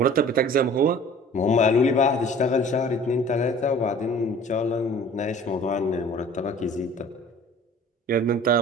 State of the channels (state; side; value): normal; both; correlation 0.46